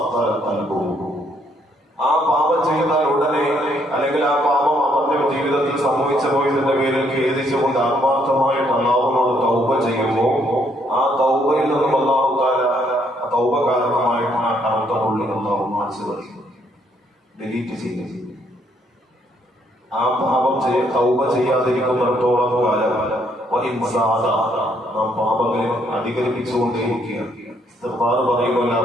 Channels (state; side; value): normal; both; correlation 0.70